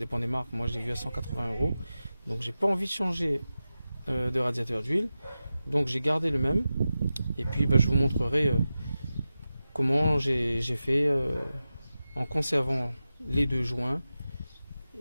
des marques. Moi je l'ai vu à 180 €, donc j'ai pas envie de changer de radiateur d'huile, donc j'ai gardé le même. Et puis je vous montrerai comment j'ai fait en conservant les deux joints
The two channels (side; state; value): both; inverted; correlation -0.93